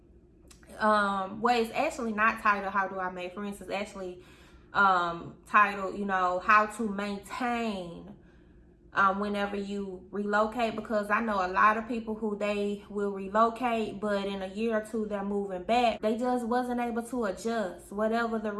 Well, it's actually not titled How Do I Make Friends. It's actually titled, you know, How to Maintain whenever you relocate, because I know a lot of people who they will relocate, but in a year or two they're moving back. They just wasn't able to adjust. Whatever the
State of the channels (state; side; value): identical; both; correlation 1.00